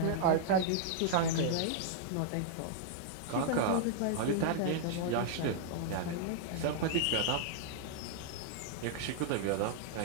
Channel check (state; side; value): different; both; correlation -0.01